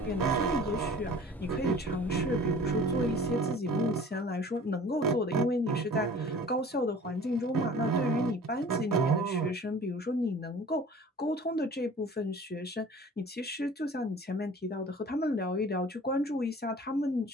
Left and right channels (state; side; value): normal; both; correlation 0.45